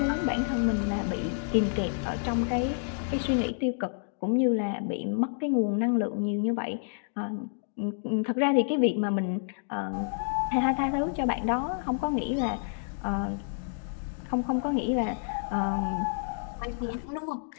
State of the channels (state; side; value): silent; right; digital silence